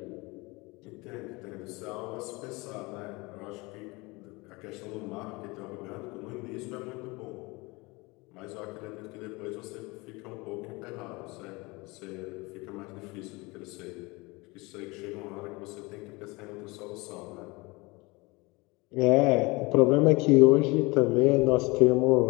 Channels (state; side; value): quieter; right; 24.7 dB